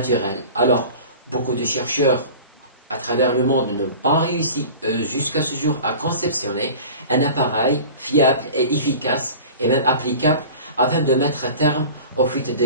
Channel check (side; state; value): both; inverted; correlation -0.39